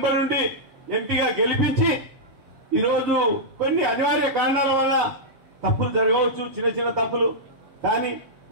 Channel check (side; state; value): left; late; 7.2 ms